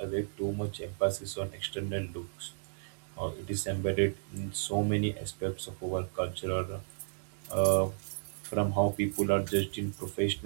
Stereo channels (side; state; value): left; silent; digital silence